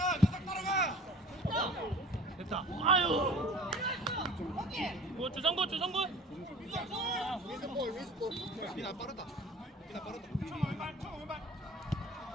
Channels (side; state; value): both; normal; correlation 0.43